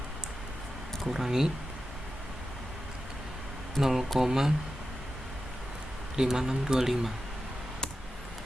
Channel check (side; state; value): both; normal; correlation 0.91